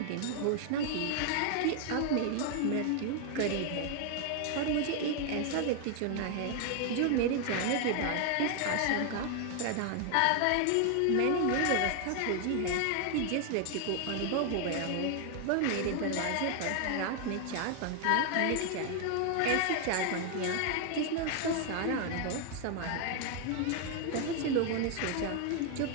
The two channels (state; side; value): different; both; correlation 0.00